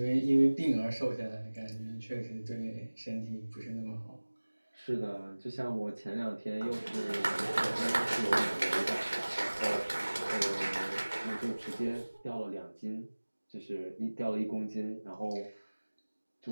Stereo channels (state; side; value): inverted; both; correlation -1.00